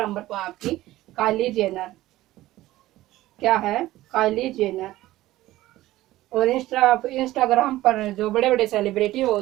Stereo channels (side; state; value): left; quieter; 16.2 dB